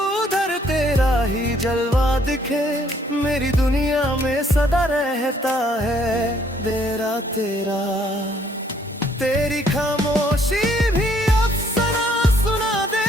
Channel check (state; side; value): normal; both; correlation 0.65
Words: उधर तेरा ही जलवा दिखे, मेरी दुनिया में सदा रहता है तेरा तेरा। तेरी खामोशी भी अफसाना सुना